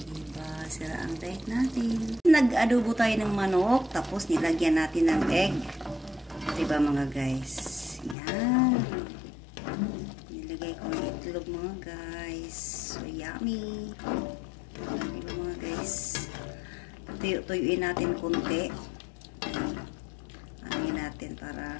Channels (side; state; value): right; drops out; at 8.2 s